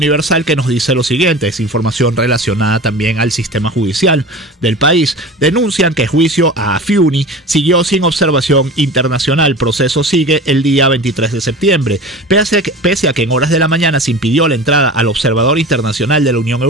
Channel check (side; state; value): both; normal; correlation 0.34